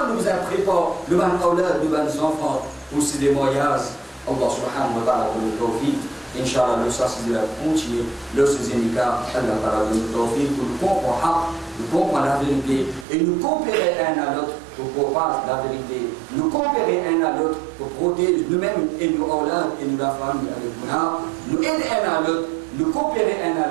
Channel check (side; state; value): left; drops out; at 13.1 s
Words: nous a préparé le ban aulad, le ban enfants pour ces voyages. Allah subhanahu wa ta'ala pour le tawfiq. Inch'Allah, le ça c'est de la continuer. Le deuxième cas, Allah ta'ala pour le tawfiq, pour nous comprendre, nous comprendre la vérité et nous coopérer un à l'autre pour parler la vérité. Nous coopérer un à l'autre pour protéger nous-mêmes et nos aulad et nous la famille avec nous. Nous aider un à l'autre. Nous coopérer un